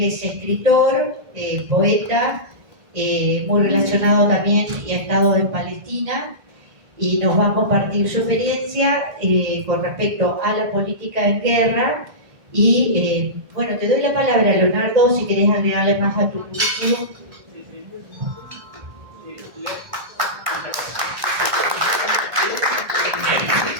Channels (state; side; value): late; left; 1.5 ms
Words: es escritor, poeta, muy relacionado también y ha estado en Palestina y nos va a compartir su experiencia con respecto a la política en guerra. Y bueno, te doy la palabra, Leonardo, si querés agregarle más a tu currículum.